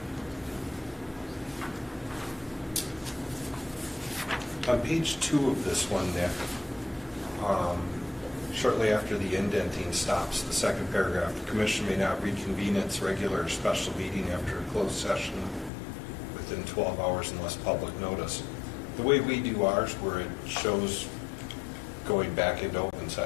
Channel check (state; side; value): drops out; right; at 15.7 s